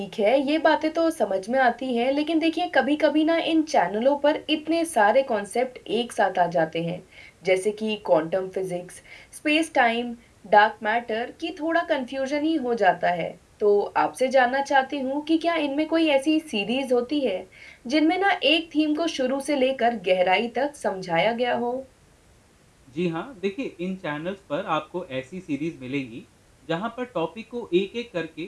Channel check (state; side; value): identical; both; correlation 1.00